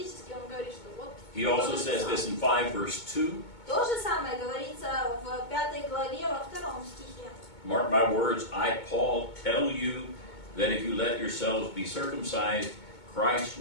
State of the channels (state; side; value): late; right; 2.2 ms